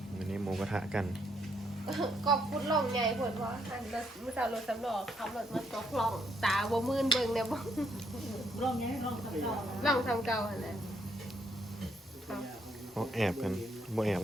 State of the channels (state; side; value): normal; both; correlation 0.74